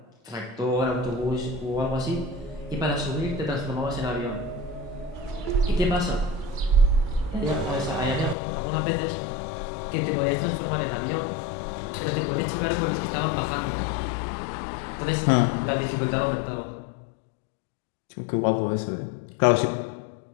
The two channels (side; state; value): right; drops out; at 8.3 s